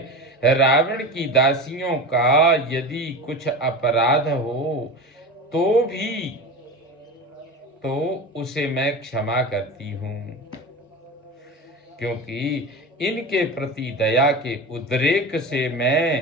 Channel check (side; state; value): both; normal; correlation 0.28